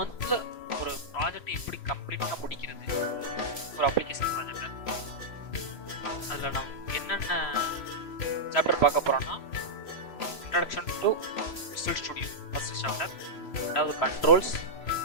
ஒரு ப்ராஜெக்ட் எப்படி கம்ப்ளீட்டாக முடிக்கிறது, ஒரு அப்ளிகேஷன் ப்ராஜெக்டை. அதில் நம்ம என்னென்ன சாப்டர் பார்க்க போகிறோம்னா, introduction to visual studio first chapter, ரெண்டாவது கண்ட்ரோல்ஸ்,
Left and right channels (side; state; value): right; late; 3.0 ms